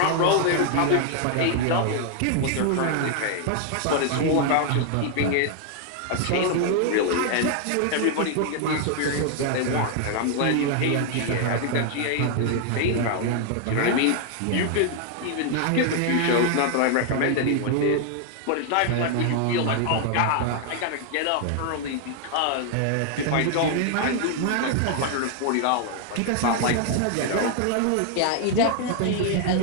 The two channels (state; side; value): different; both; correlation 0.00